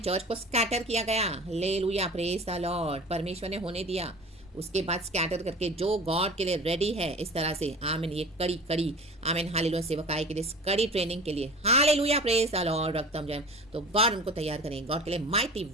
को स्कैटर किया गया, हालेलुया, प्रेज द लॉर्ड। परमेश्वर ने होने दिया, उसके बाद स्कैटर करके जो गॉड के लिए रेडी है इस तरह से, आमीन, ये कड़ी कड़ी, आमीन, हालेलुया, सेवकाई के लिए, कड़ी ट्रेनिंग के लिए, हालेलुया, प्रेज द लॉर्ड, रक्तम जय, तो गॉड उनको तैयार करें, गॉड के लिए माइटी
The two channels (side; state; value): both; normal; correlation 0.38